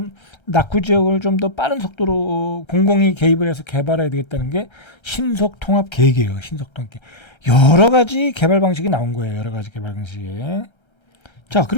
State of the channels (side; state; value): right; late; 1.3 ms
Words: 낙후 지역을 좀 더 빠른 속도로 공공이 개입을 해서 개발해야 되겠다는 게 신속통합 계획이에요. 신속통합 계획. 여러 가지 개발 방식이 나온 거예요. 여러 가지 개발 방식이. 자,